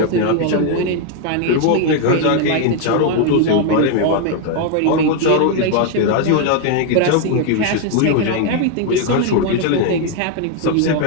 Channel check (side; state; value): both; different; correlation 0.01